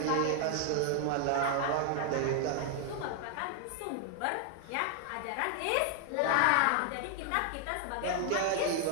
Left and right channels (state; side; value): different; both; correlation 0.00